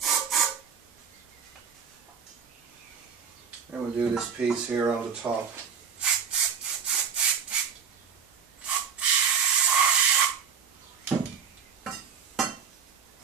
And we'll do this piece here on the top.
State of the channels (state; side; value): quieter; left; 6.6 dB